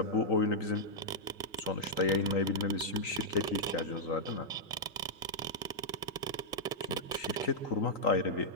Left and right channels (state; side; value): normal; both; correlation -0.07